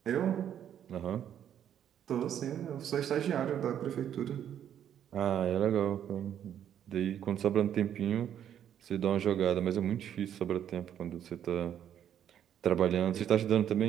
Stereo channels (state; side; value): quieter; left; 9.8 dB